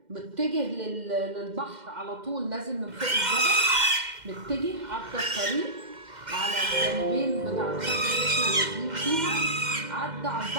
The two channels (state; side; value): late; left; 2.1 ms